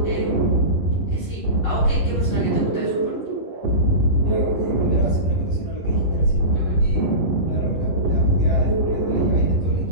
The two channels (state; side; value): late; right; 11 ms